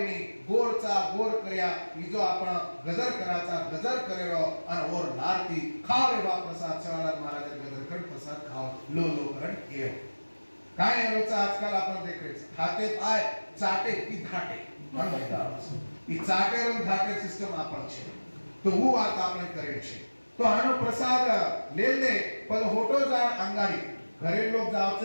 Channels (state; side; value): inverted; both; correlation -1.00